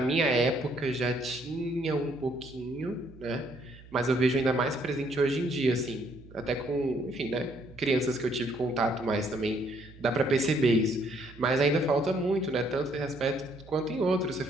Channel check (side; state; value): right; noise; hum, 20 dB below the sound